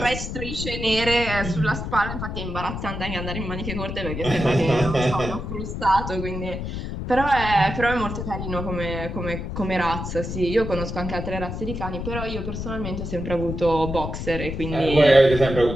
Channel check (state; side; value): noise; left; rumble, 5 dB below the sound